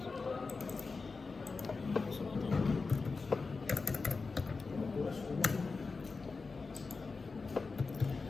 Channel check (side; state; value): right; quieter; 4.3 dB